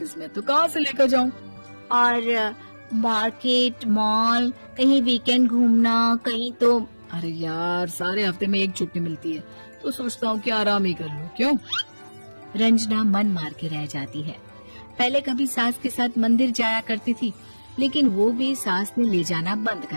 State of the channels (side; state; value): both; inverted; correlation -1.00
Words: में, तो कहाँ से लेकर जाऊं? और मार्केट, मॉल, कहीं वीकेंड घूमना, कहीं तो। अरे यार सारे हफ्ते में एक छुट्टी मिलती है, तो सोचता हूँ कि आराम ही कर लूं। क्यों? रंजना मन मार के रह जाती है। पहले कभी सास के साथ मंदिर जाया करती थी, लेकिन वो भी सास ने ले जाना बंद